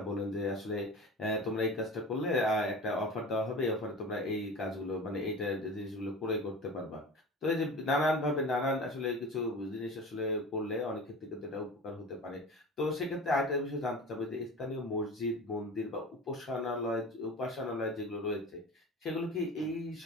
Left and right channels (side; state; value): both; normal; correlation 0.34